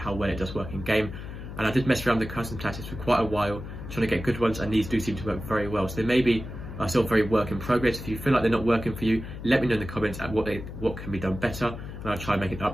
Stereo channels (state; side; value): noise; left; hum, 10 dB below the sound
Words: well it does work in game. And I did mess around with the custom tactics for quite a while, trying to get good ones, and these do seem to work very well. So they may be still very work in progress. If you feel like they're not working for you, let me know in the comments at what can be done better, and I'll try and make an